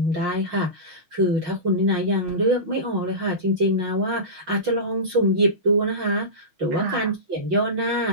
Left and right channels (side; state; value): left; late; 6.2 ms